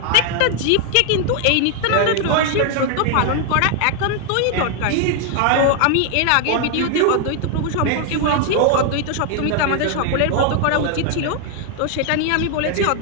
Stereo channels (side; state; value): both; different; correlation 0.00